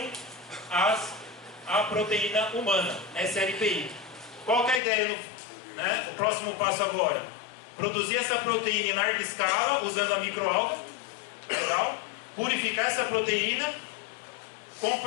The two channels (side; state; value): right; drops out; at 4.8 s